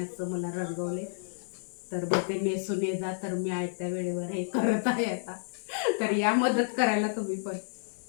मला रंगवले. तर मग ते नेसून ये जा, तर मी आयत्या वेळेवर हे करत आहे आता. तर या मदत करायला तुम्ही पण.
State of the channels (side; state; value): right; silent; digital silence